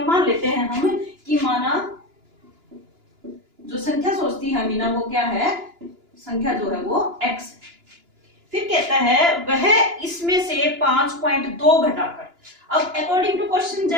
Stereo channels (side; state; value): left; late; 2.9 ms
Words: मान लेते हैं हम कि माना जो संख्या सोचती है अमीना वो क्या है, संख्या जो है वो x। फिर कहता है वह इसमें से 5.2 घटाकर, अब अकॉर्डिंग टू क्वेश्चन